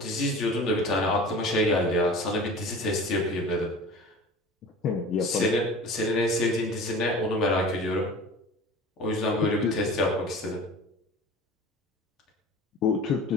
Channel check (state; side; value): normal; both; correlation 0.39